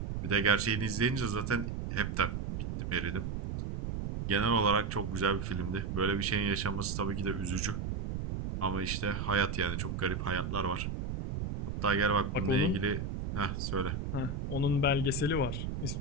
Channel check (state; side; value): noise; right; rumble, 3 dB below the sound